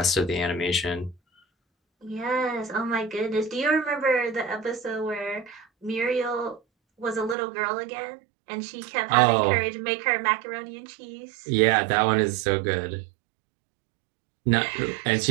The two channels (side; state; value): left; drops out; at 7.4 s